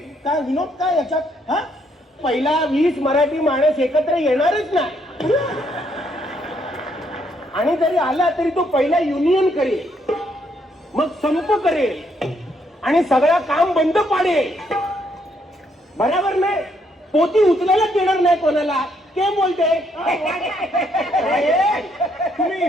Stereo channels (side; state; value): both; normal; correlation 0.72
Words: काय विनोद काय याच्यात. हा, पहिला 20 मराठी माणूस एकत्र येणारच नाही, आणि जरी आला तरी तो पहिला युनियन करेल, मग संप करेल आणि सगळं काम बंद पाडेल. बरोबर नाही. पोती उचलायला देणार नाही कोणाला. के बोलते. तुम्ही